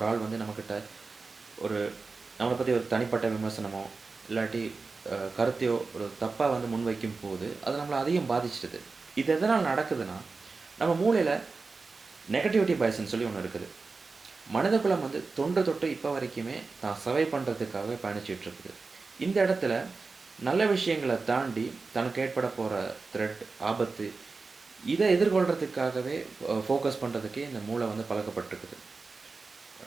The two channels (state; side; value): quieter; left; 4.1 dB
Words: ஆள் வந்து நம்மகிட்ட ஒரு நம்மள பத்தி ஒரு தனிப்பட்ட விமர்சனமோ, இல்லாட்டி கருத்தையோ ஒரு தப்பா வந்து முன்வைக்கும்போது, அது நம்மள அதிகம் பாதிச்சிடுது. இது எதனால நடக்குதுன்னா, நம்ம மூளையில நெகட்டிவிட்டி பயஸ்ன்னு சொல்லி ஒண்ணு இருக்குது. மனிதகுலம் வந்து தொன்று தொட்டு இப்ப வரைக்குமே தான் சர்வை பண்றதுக்காகவே பயணிச்சுட்டு இருக்குது. இந்த இடத்துல நல்ல விஷயங்கள தாண்டி தனக்கு ஏற்பட போற த்ரெட், ஆபத்து இத எதிர்கொள்றதுக்காகவே ஃபோக்கஸ் பண்றதுக்கே இந்த மூளை வந்து பழக்கப்பட்டிருக்குது.